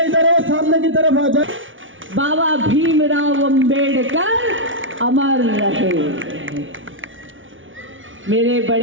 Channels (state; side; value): late; left; 0.57 ms